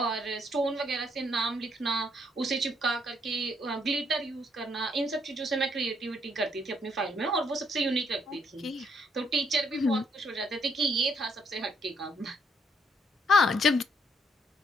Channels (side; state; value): both; normal; correlation 0.71